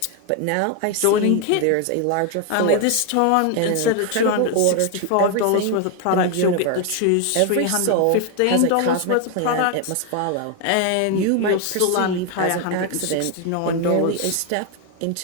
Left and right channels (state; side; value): different; both; correlation 0.01